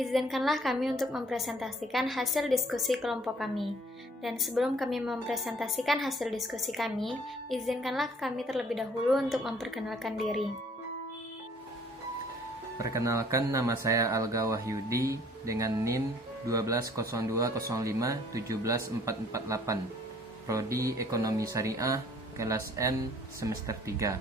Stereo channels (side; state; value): both; normal; correlation 0.57